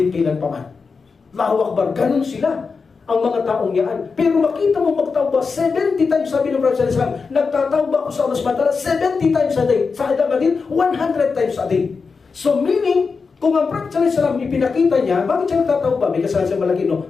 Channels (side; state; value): right; quieter; 4.9 dB